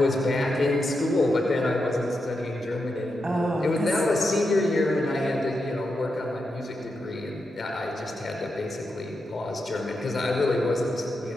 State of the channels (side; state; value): both; normal; correlation 0.86